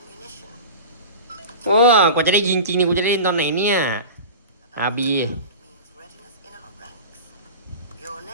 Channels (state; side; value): inverted; both; correlation -0.31